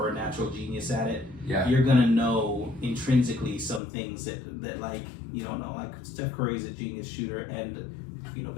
a natural genius at it, you're gonna know intrinsically some things that like you don't know. Like Steph Curry's a genius shooter and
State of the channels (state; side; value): drops out; right; at 3.8 s